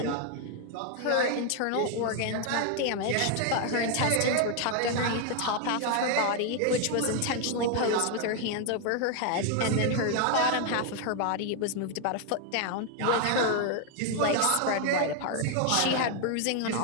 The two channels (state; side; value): different; both; correlation 0.01